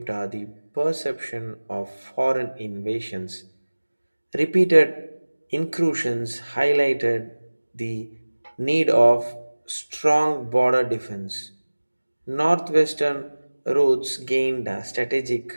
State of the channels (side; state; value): both; inverted; correlation -1.00